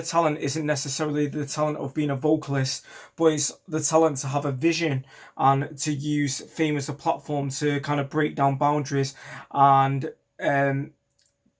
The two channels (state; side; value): identical; both; correlation 1.00